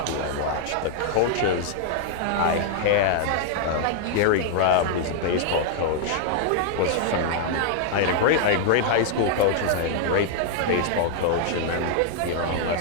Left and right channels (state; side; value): different; both; correlation 0.00